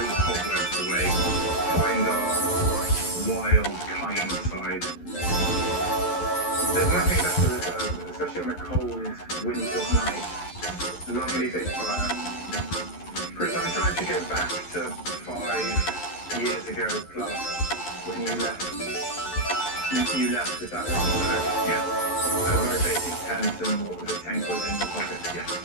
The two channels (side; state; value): right; late; 11 ms